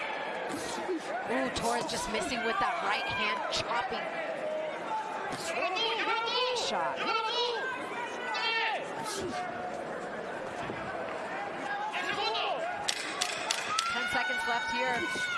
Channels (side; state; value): both; identical; correlation 1.00